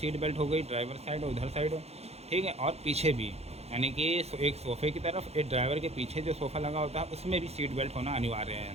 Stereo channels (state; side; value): late; left; 0.30 ms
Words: बेल्ट हो गई, ड्राइवर साइड और उधर साइड, ठीक है, और पीछे भी, यानी कि एक सोफ़े की तरफ, एक ड्राइवर के पीछे जो सोफ़ा लगा होता है उसमें भी सीट बेल्ट होना अनिवार्य